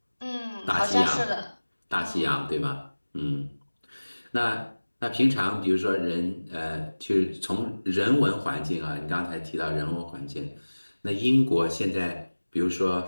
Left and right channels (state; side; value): inverted; both; correlation -1.00